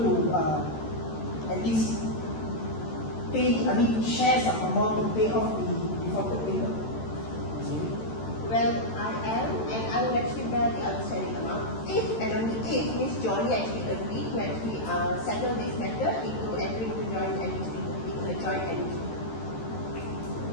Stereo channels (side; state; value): right; late; 13 ms